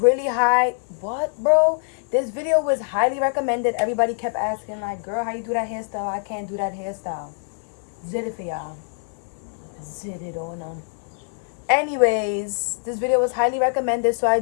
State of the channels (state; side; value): silent; right; digital silence